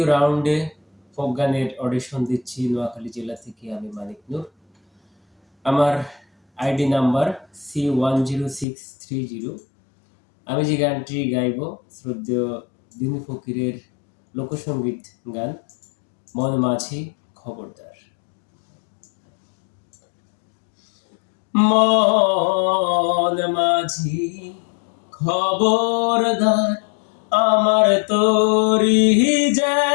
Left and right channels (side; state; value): right; drops out; at 8.7 s